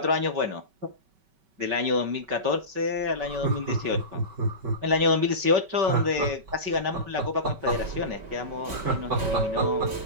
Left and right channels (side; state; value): left; late; 5.3 ms